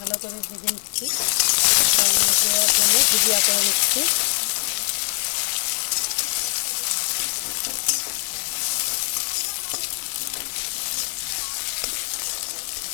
করে ভেজে নিচ্ছি, দেওয়ার জন্য ভুজিয়া করে নিচ্ছি।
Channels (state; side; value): silent; right; 64 dB below the other